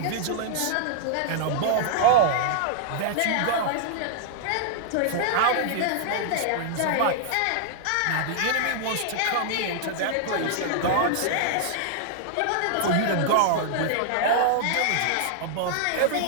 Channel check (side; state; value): both; different; correlation -0.01